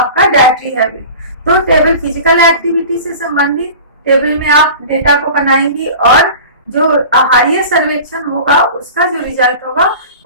डाइटरी हैबिट। तो टेबल फिजिकल एक्टिविटी से संबंधित टेबल में आप डेटा को बनाएंगी और जो आहारीय सर्वेक्षण होगा उसका जो रिजल्ट होगा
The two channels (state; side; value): inverted; both; correlation -0.38